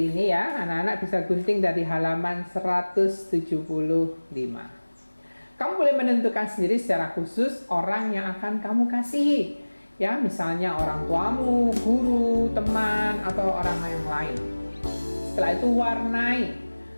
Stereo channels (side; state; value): both; inverted; correlation -1.00